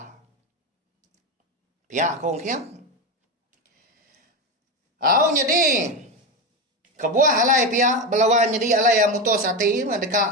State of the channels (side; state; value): both; normal; correlation 0.16